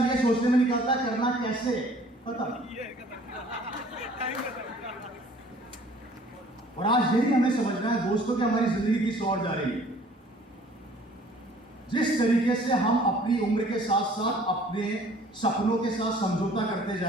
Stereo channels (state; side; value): normal; both; correlation 0.54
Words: ये सोचने में निकालता है करना कैसे। पता। और आज यही हमें समझना है दोस्तों कि हमारी जिंदगी किस ओर जा रही है। जिस तरीके से हम अपनी उम्र के साथ साथ अपने सपनों के साथ समझौता करते